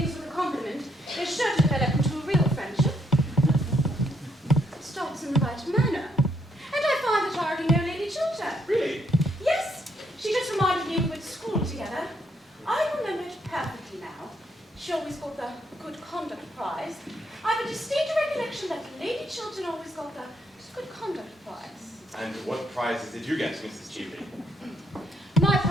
with a compliment is sure to develop into a real friendship. Stop good conduct prize. And what prizes did you get, Mrs. Cheveley? My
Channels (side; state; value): both; normal; correlation 0.73